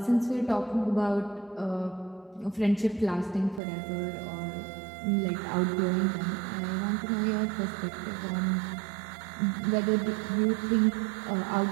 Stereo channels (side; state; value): left; drops out; at 3.6 s